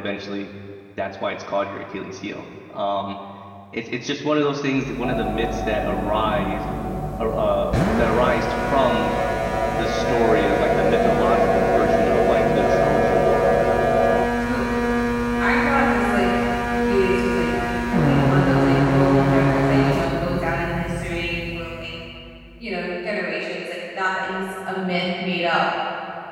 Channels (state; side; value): identical; both; correlation 1.00